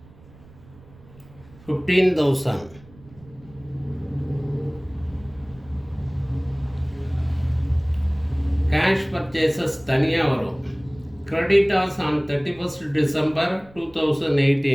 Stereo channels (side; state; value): right; noise; rumble, 24 dB below the sound